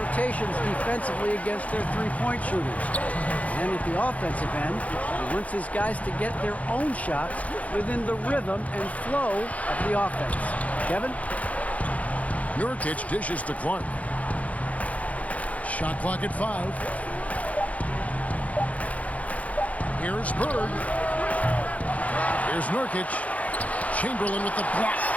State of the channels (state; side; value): late; right; 0.068 ms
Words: defensively against their three-point shooters. And at the offensive end, he wants his guys to get their own shots within the rhythm and flow of the offense. Kevin? Nurkic dishes to Clark. Shot clock at 5. Here's Bird. Here's Nurkic. Chamberlain with the block.